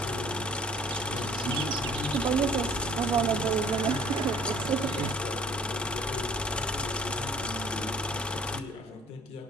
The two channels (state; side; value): normal; both; correlation 0.54